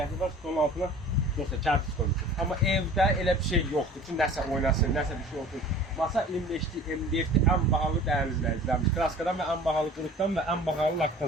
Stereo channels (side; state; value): both; normal; correlation 0.44